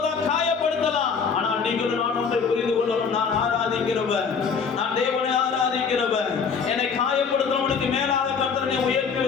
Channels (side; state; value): right; quieter; 5.9 dB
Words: காயப்படுத்தலாம். ஆனால் நீங்களும் நான் ஒன்றை புரிந்து கொள்ளணும். நான் ஆராதிக்கிறவன், நான் தேவனை ஆராதிக்கிறவன். என்னை காயப்படுத்தவனுக்கு மேலாக கர்த்தர் என்னை உயர்த்தி